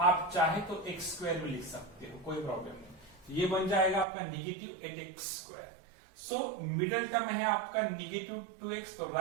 आप चाहे तो x स्क्वायर भी लिख सकते हो, कोई प्रॉब्लम नहीं. ये बन जाएगा आपका -8x square. So middle term है आपका -2x. तो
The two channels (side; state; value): left; drops out; at 4.0 s